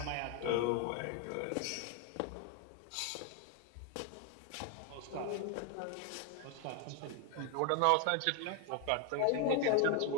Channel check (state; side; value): different; both; correlation 0.01